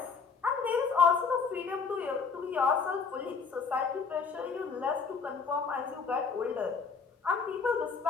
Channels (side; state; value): right; quieter; 5.4 dB